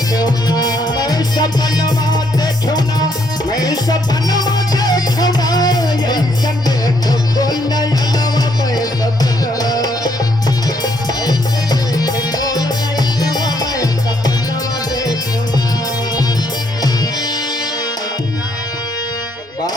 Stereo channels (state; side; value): normal; both; correlation 0.71